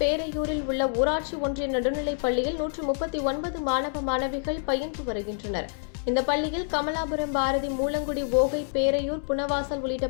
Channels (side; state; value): right; silent; 60 dB below the other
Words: உள்ள ஊராட்சி ஒன்றிய நடுநிலைப் பள்ளியில் 139 மாணவ மாணவிகள் பயின்று வருகின்றனர். இந்த பள்ளியில் கமலாபுரம், பாரதி, மூலங்குடி, ஓகை, பேரையூர், புனவாசல் உள்ளிட்ட